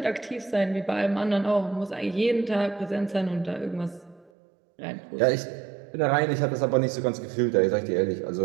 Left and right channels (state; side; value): drops out; left; at 4.3 s